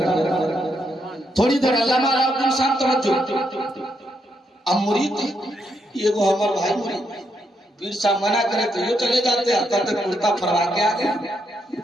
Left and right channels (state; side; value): normal; both; correlation 0.79